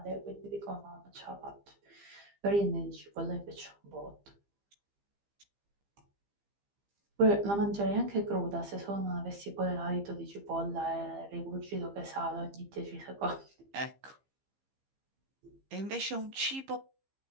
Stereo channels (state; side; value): late; left; 15 ms